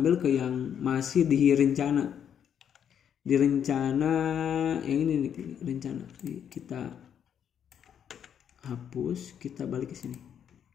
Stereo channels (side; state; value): right; quieter; 8.7 dB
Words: ke yang masih di rencana. Di rencana yang ini nih, rencana. Kita hapus, kita balik ke sini.